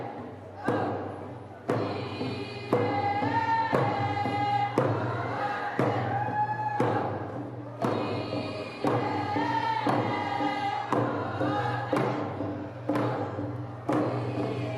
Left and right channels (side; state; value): both; identical; correlation 1.00